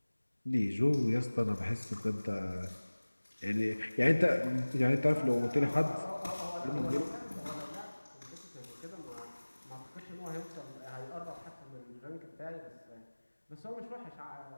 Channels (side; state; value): both; inverted; correlation -1.00